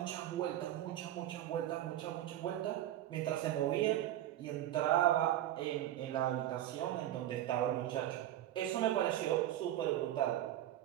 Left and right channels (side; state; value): left; quieter; 13.0 dB